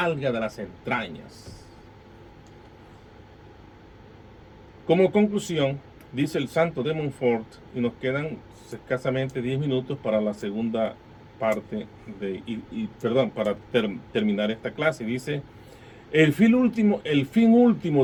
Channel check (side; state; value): both; identical; correlation 1.00